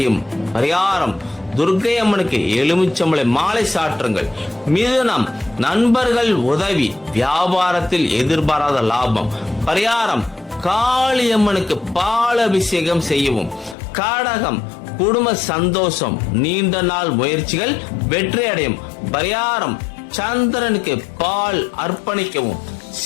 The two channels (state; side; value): drops out; right; at 13.8 s